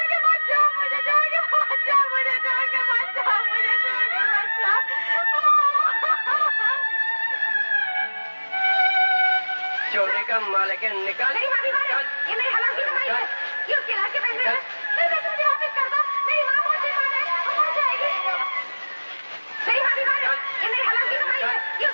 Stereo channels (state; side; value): inverted; both; correlation -1.00